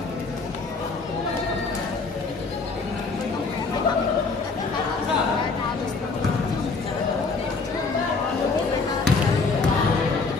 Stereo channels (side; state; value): right; quieter; 4.2 dB